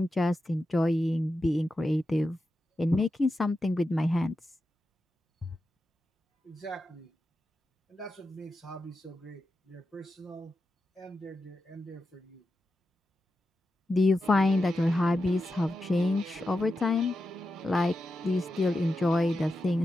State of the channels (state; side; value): normal; both; correlation 0.90